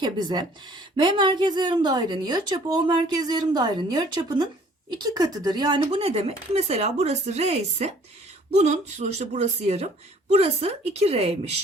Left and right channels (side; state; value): both; normal; correlation 0.56